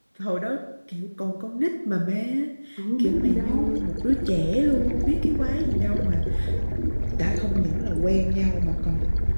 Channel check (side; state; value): both; inverted; correlation -1.00